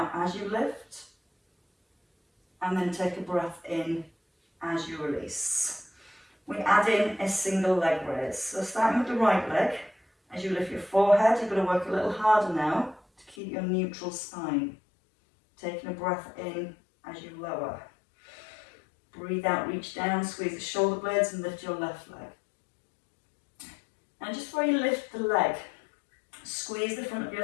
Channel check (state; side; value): drops out; right; at 13.4 s